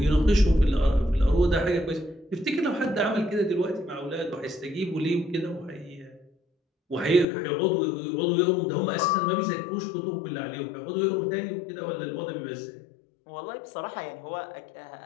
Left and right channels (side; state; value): right; drops out; at 7.2 s